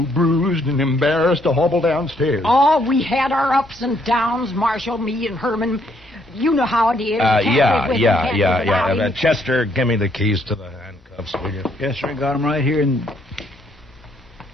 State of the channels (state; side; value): normal; both; correlation 0.70